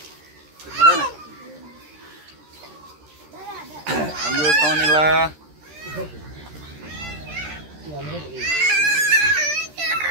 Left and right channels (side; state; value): left; late; 13 ms